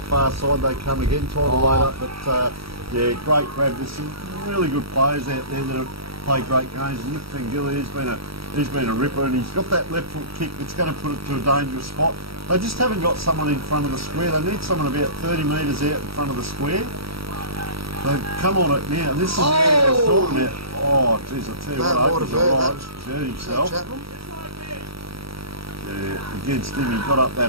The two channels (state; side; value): late; left; 0.76 ms